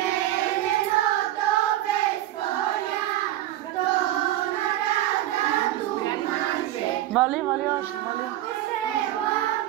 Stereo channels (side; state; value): left; quieter; 14.0 dB